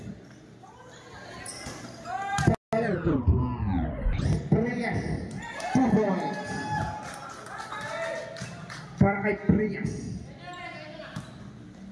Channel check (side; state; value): both; identical; correlation 1.00